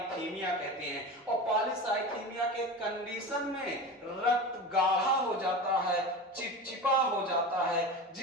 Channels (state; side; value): normal; both; correlation 0.29